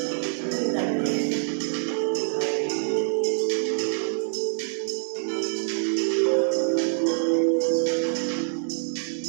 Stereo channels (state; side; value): silent; left; digital silence